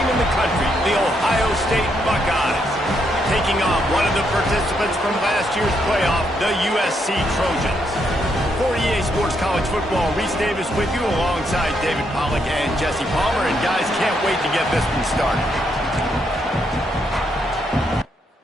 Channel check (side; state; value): both; normal; correlation 0.77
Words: in the country, the Ohio State Buckeyes, taking on one of the participants from last year's playoff, the USC Trojans. For EA Sports College Football, Reese Davis with you alongside David Pollack and Jesse Palmer. And guys, can't wait to get this one started.